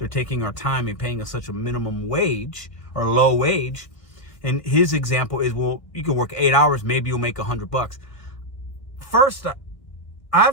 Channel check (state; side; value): late; right; 1.7 ms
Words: taking our time and paying us such a minimum wage or low wage. And his example is, well, you can work 8 hours, maybe you'll make $100. First,